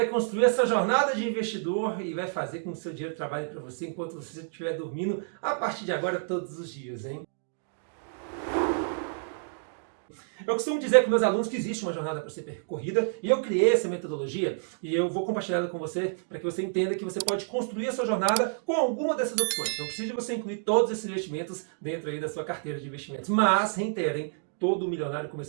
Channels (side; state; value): left; silent; digital silence